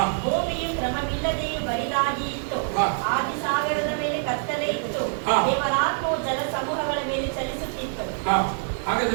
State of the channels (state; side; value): silent; left; 62 dB below the other